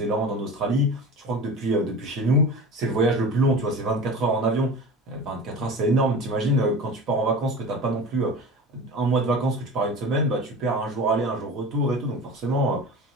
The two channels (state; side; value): normal; both; correlation 0.34